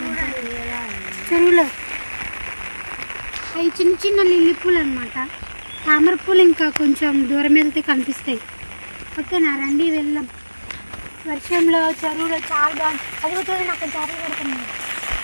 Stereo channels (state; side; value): inverted; both; correlation -1.00